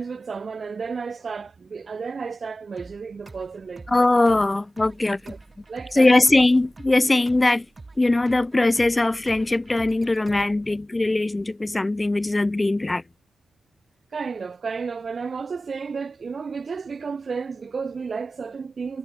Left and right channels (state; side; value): normal; both; correlation 0.98